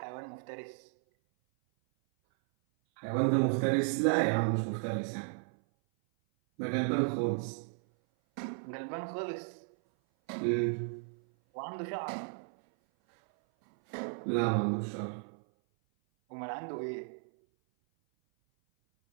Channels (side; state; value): left; silent; 55 dB below the other